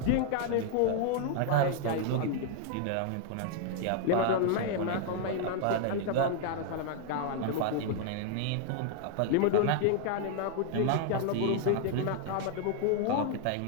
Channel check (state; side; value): different; both; correlation 0.00